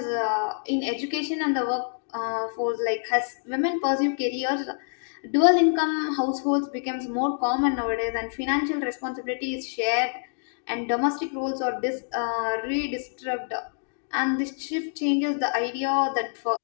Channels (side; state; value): right; silent; 61 dB below the other